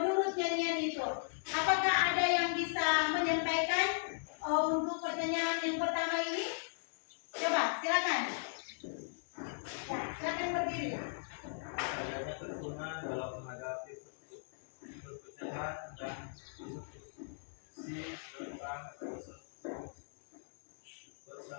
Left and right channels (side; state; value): right; silent; digital silence